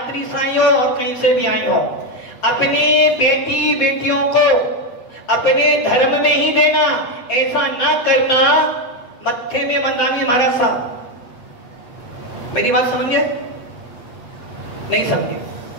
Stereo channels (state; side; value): late; right; 8.2 ms